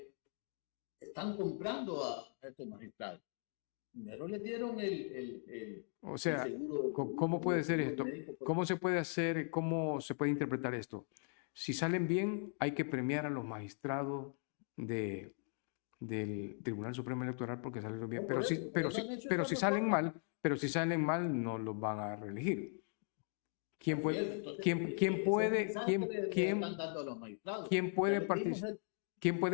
están comprando a estos magistrados. Primero le dieron el seguro. ¿Cómo puede ser esto? Médico, ¿Cómo se puede hacer? ¿Cómo se puede interpretar esto? Si salen bien, hay que premiar a los magistrados del Tribunal Supremo Electoral porque salieron bien. No, pero si salen mal, no los van a reelegir. ¿Quién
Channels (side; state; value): right; silent; 52 dB below the other